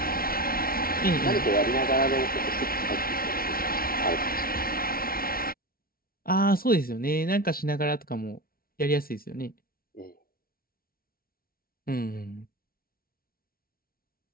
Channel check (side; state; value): right; late; 0.43 ms